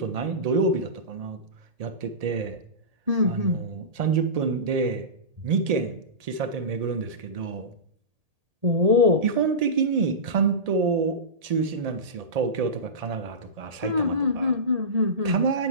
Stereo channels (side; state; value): left; late; 1.8 ms